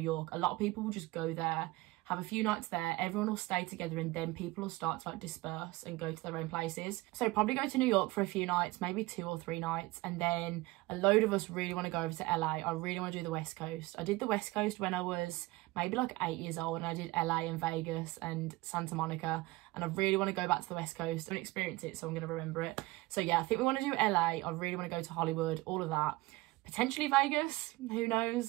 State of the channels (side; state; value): left; quieter; 20.5 dB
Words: York, a lot of people will just go there, have a few nights there, everyone will stay together, and then people will start to like disperse and go to their own places. So probably go to New York for a few nights, maybe 2 or 3 nights, and then a load of us really want to go over to LA. I really want to do the West Coast. I did the West Coast when I was maybe like 8 years old, and I did LA and Vegas and Santa Monica, and I really want to go back to the West Coast and experience it, so I'm going to remember it. So yeah, I think we want to do LA. I really want to go to Hollywood, all of that. Potentially Vegas, who